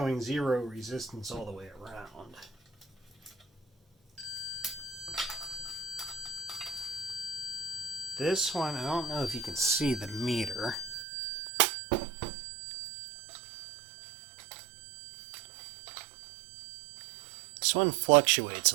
0 resistance all the way around. This one, I don't know if you can see the meter. This one fluctuates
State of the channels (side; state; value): left; drops out; at 11.1 s